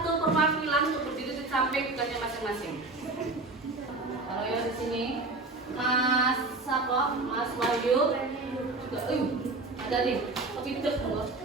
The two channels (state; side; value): quieter; left; 3.3 dB